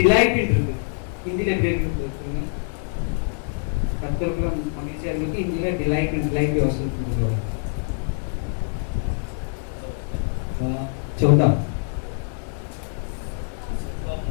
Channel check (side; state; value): right; silent; 62 dB below the other